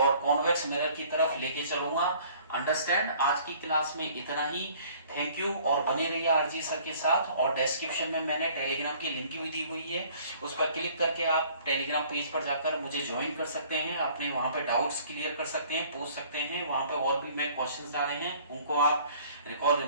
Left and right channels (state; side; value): inverted; both; correlation -0.54